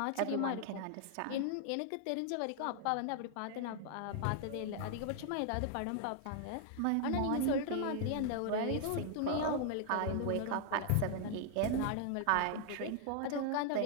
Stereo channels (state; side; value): different; both; correlation 0.00